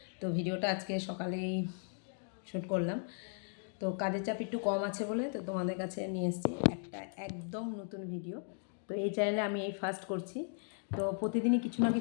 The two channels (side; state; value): right; silent; 53 dB below the other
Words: তো ভিডিওটা আজকে সকালেই শ্যুট করলাম। তো কাজের চাপ একটু কম আছে বলে তো তোমাদের কাছে নিয়ে এসেছি একটা একদম নতুন ভিডিও। তো এই চ্যানেলে আমি এই ফার্স্ট করছি। তো প্রতিদিনই কিছু না